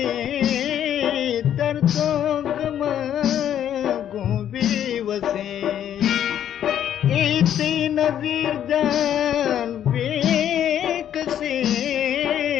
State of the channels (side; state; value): right; quieter; 10.2 dB